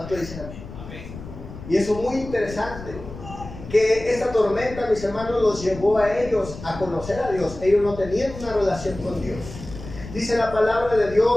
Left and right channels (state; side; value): noise; left; rumble, 13 dB below the sound